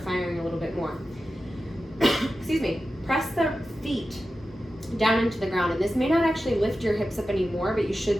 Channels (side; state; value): both; normal; correlation 0.93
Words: firing a little bit more. Excuse me. Press the feet down into the ground, and this may not actually lift your hips up anymore, but you